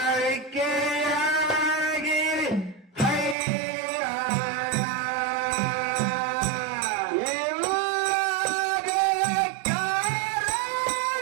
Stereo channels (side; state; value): left; drops out; at 3.4 s